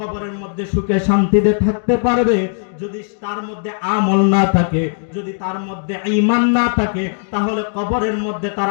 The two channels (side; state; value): right; silent; 64 dB below the other